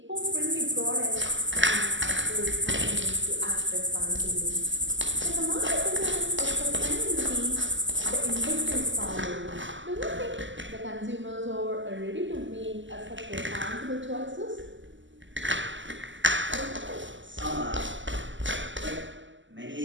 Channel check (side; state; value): left; late; 0.54 ms